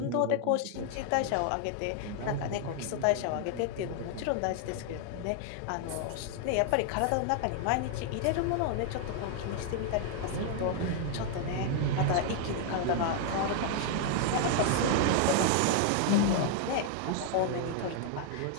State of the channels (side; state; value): both; different; correlation 0.00